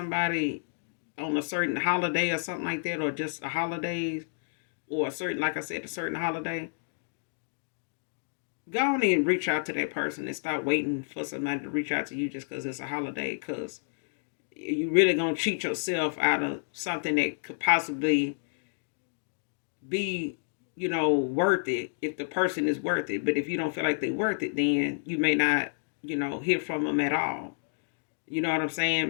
on a certain holiday or something like that, or just a holiday, or a certain, like I said, a certain holiday, go on and reach out to that person and stop waiting for somebody to reach out to you just because it's a holiday. Because you really gonna cheat yourself out of something that could possibly be, worth it if the person is worth it. But if you don't feel like they're worth it, then you may not, hear from them at all. You know what I'm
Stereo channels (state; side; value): silent; right; digital silence